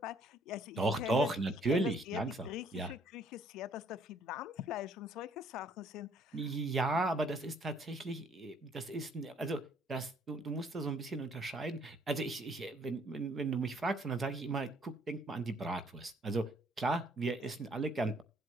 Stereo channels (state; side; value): normal; both; correlation 0.63